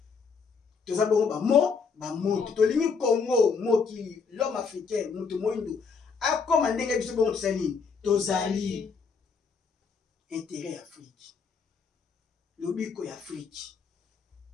Toza bongo ba moto. Tolingi Congo, mokili, l'homme africain, mutu moindo. A comme ndenge biso bongo tozali. Tozali. Intérêt Afrique. Lobiko ya Afrique.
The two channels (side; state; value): right; quieter; 5.4 dB